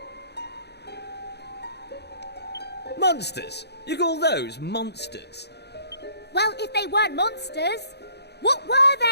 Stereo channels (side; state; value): right; late; 0.48 ms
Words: Monsters? You call those monsters? Well, if they weren't monsters, what were